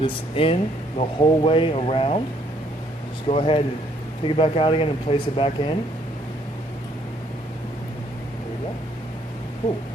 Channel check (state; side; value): normal; both; correlation 0.67